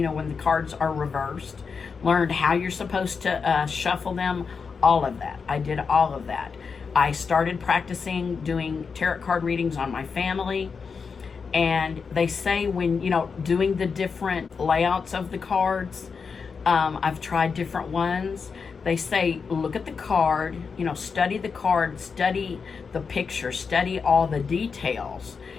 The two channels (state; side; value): quieter; right; 5.5 dB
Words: know, when the cards are reversed. Learned how you're supposed to shuffle them, all of that. I did all of that. I started practicing doing tarot card readings on my family. And they say when, you know, doing the different layouts of the cards, I've tried different ones. They say, look at the card, you know, study the card, study the picture, study all the details,